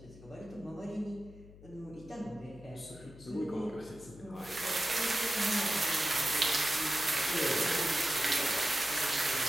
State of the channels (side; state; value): left; noise; hum, 19 dB below the sound